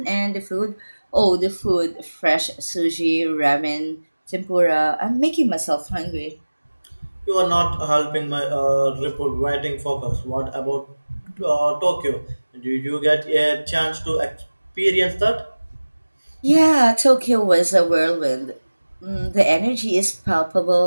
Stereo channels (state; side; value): inverted; both; correlation -1.00